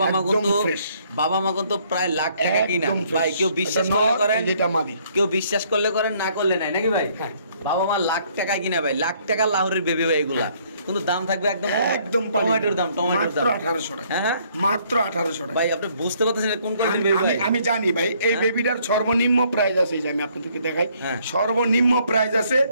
মা একদম কিন্তু fresh। বাবা মা কিন্তু প্রায় লাখ টাকা কিনা একদম fresh। ভাই, কেউ বিশ্বাস এটা করলে নর, করেন, যেটা মাদি। কেউ বিশ্বাস করলে করেন, না করলে নাই নাকি ভাই? হ্যাঁ। বাবা মা লাখ টাকা কিনা ভাই, লাখ টাকা লাহোরের বেবি ভাই এগুলা, কিন্তু দাম থাকবে একদম একদম টমেটোর দাম, টমেটোর দাম মাত্র 1800 টাকা। হ্যাঁ হ্যাঁ মাত্র 1800 টাকা। ভাই আপনি বুঝতে পারতেছেন এটা কোন কোয়ালিটির বেবি ভাই? আমি জানি ভাই, এই হ্যাঁ? বেবিটার সর্বনিম্ন প্রাইস আছে, এই যে আমি আপনাদেরকে দেখাই, হ্যাঁ। সর্বনিম্ন প্রাইস আছে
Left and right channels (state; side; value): inverted; both; correlation -0.65